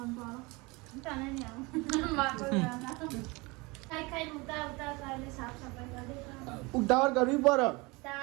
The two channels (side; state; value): left; quieter; 25.4 dB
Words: ઉતાવળ કરવી પડે